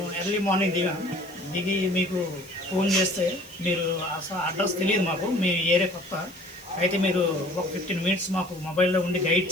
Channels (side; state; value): left; noise; hiss, 22 dB below the sound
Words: ఎర్లీ మార్నింగ్ దిగి మీకు ఫోన్ చేస్తే మీరు అసలు అడ్రస్ తెలియదు మాకు, మీ ఏరియా కొత్త అయితే మీరు ఒక 15 మినిట్స్ మాకు మొబైల్లో ఉండి గైడ్